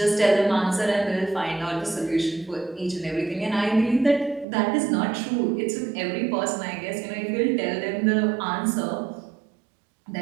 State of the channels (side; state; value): left; drops out; at 4.5 s